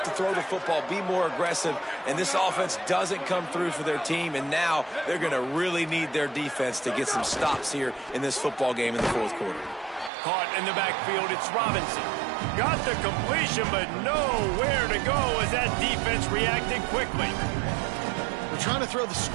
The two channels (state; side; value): drops out; left; at 10.1 s